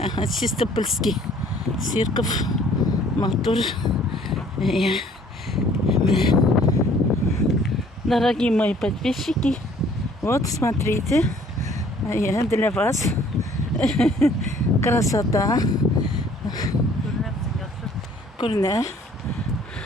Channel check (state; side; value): normal; both; correlation 0.57